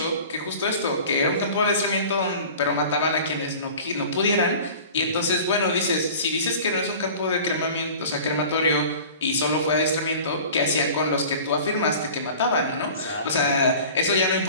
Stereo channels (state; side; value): inverted; both; correlation -0.41